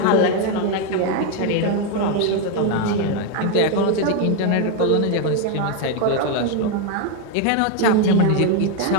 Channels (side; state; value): both; different; correlation 0.01